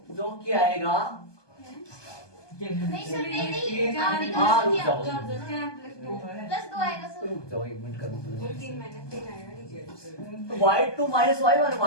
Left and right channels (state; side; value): late; right; 1.2 ms